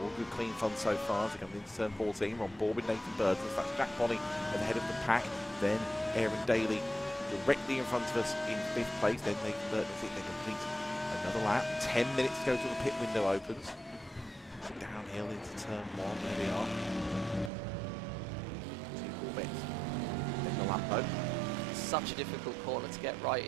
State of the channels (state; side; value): drops out; left; at 17.5 s